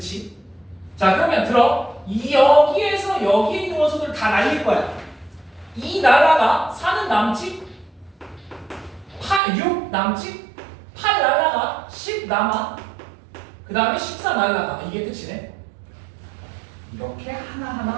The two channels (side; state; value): left; drops out; at 9.4 s